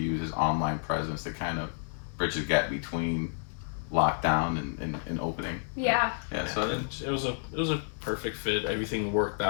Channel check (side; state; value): right; silent; digital silence